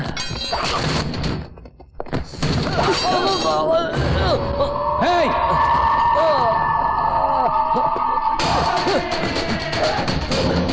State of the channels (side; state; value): both; identical; correlation 1.00